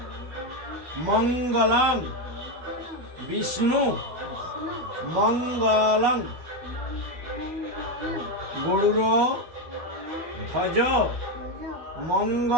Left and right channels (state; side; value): late; left; 12 ms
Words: মঙ্গলং বিষ্ণু মঙ্গলং গরুর ধ্বজ